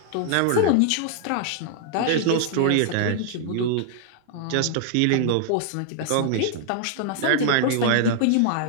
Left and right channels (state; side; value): different; both; correlation -0.01